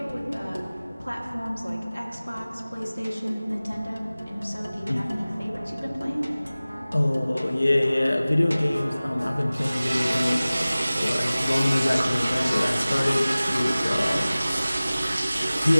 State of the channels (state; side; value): inverted; both; correlation -0.98